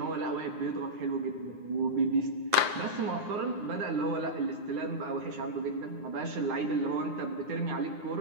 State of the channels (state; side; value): late; left; 9.7 ms